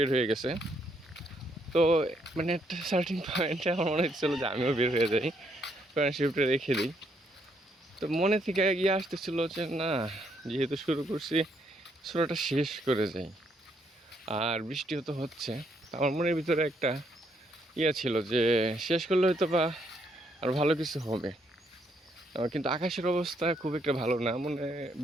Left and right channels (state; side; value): normal; both; correlation 0.73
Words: হয়ে গেছে। তো মানে একটা সার্টিন পয়েন্টে আমার মনে হচ্ছিলো যে আমিও বের হয়ে যাই, কারণ শিফটে রেখে দিই। তো মনে থেকে গিয়ে আসতেছিল যে না, যেহেতু শুরু করছি সূরাটা শেষ করে যাই। আর বৃষ্টিও তো হচ্ছে, আমার মনের ভিতরে একটা ছিল যে শেষ করলে হয়তো বা আর ভালো কিছু হবে। কিন্তু আকাশের অবস্থা খুব একটা ভালো না, মনে